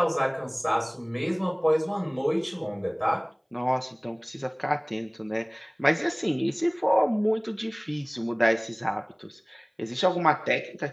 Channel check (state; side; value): identical; both; correlation 1.00